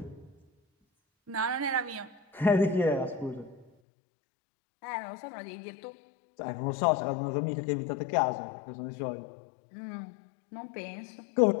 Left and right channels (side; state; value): right; drops out; at 3.7 s